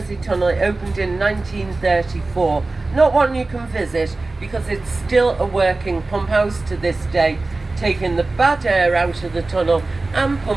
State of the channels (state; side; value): quieter; left; 3.3 dB